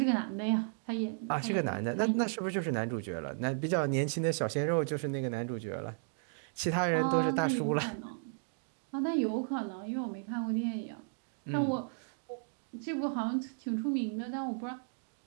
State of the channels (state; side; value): silent; left; digital silence